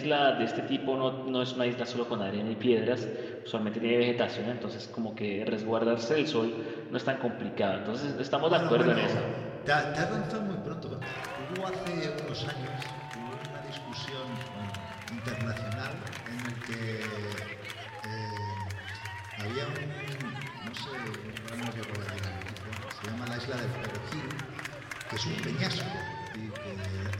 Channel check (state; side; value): identical; both; correlation 1.00